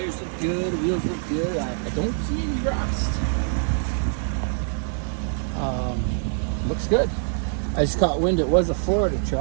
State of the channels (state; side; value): silent; left; 62 dB below the other